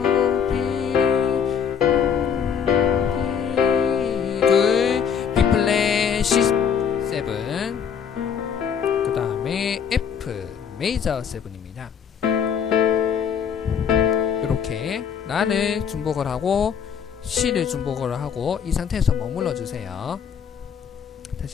B플랫 C7 그 다음에 F 메이저 7입니다. 이렇게 라를 중복을 하고 C를 중복을 하고 이 상태에서 머물러 주세요.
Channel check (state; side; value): quieter; right; 7.4 dB